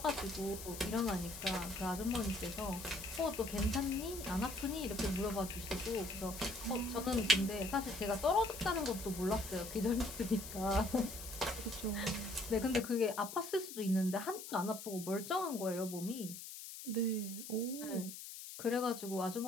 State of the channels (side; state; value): left; noise; hiss, 10 dB below the sound